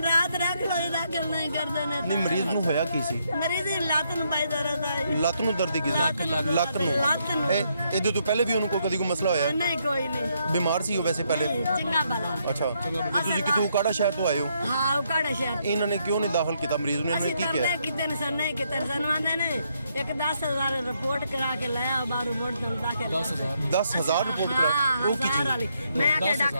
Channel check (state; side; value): inverted; both; correlation -0.75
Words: ਰਾਤ ਰੱਖ ਲੋਈ ਦਾਖਲ ਨਹੀਂ ਕਰਦੇ ਨੇ ਨਹੀਂ ਮਰੀਜ਼ ਨੂੰ ਹੋਇਆ ਕੀ ਸੀ ਮਰੀਜ਼ ਦੀ ਲੱਤ ਨੂੰ ਪਾਈ ਦਰਦ ਆਈ ਲੱਤ ਨੂੰ ਦਰਦ ਕੀ ਸੀ ਲੱਤ ਨੂੰ ਇਹਦੇ ਤੋਂ ਪਹਿਲੇ ਵੀ ਉਹਨੂੰ ਕਦੀ ਕੋਈ ਮਸਲਾ ਹੋਇਆ ਨਹੀਂ ਕੋਈ ਨਹੀਂ ਬਿਮਾਰ ਸੀ ਉਹ ਵੈਸੇ ਪਹਿਲੇ ਚੰਗਾ ਭਲਾ ਅੱਛਾ ਤੁਸੀਂ ਕਿਤੋਂ ਕਾੜਾ ਸ਼ਹਿਰ ਤੋਂ ਆਏ ਹੋ ਹਾਂ ਉਹ ਕਾੜਾ ਸ਼ਹਿਰ ਇਹਨਾਂ ਨੇ ਕਿਉਂ ਨਹੀਂ ਦਾਖਲ ਕੀਤਾ ਮਰੀਜ਼ ਨੂੰ ਇਹਨਾਂ ਨੇ ਅਸੀਂ ਕੀ ਕਿਹਾ ਤਰਲੇ ਕਿਤੇ ਨੇ ਸਰ ਨਹੀਂ ਕਿਤੇ ਸਾਨੂੰ ਆਂਦੇ ਨੇ ਇੱਕ 10,000 ਰਿਪੋਰਟ ਕਰਾ ਕੇ ਲੈ ਆ ਬਾਹਰੋਂ ਮੋੜ ਦਮ ਦਾਖਲ 10,000 ਰਿਪੋਰਟ ਕਰਾ ਉਹ ਕੀ ਚੀਜ਼ ਮੈਂ ਕਿ